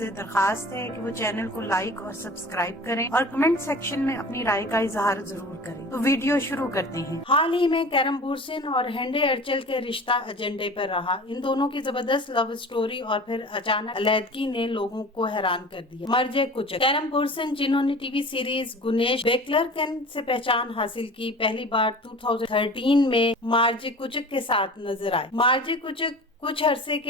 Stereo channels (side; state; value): both; normal; correlation 0.39